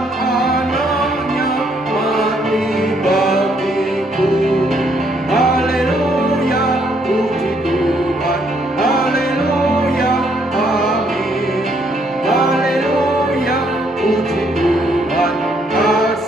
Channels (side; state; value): both; normal; correlation 0.70